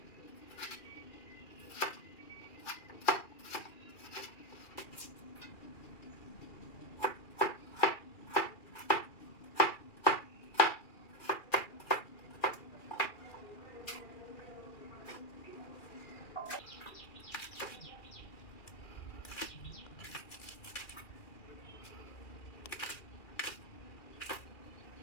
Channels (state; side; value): late; right; 2.3 ms